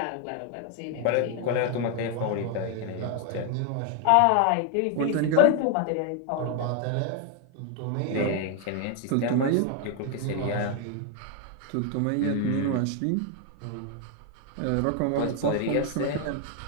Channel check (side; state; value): both; different; correlation 0.00